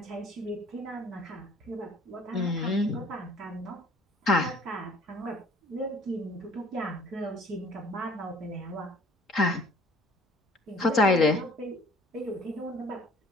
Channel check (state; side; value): normal; both; correlation 0.54